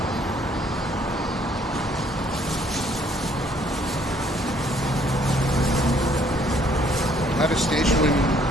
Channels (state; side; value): normal; both; correlation 0.64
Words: At a station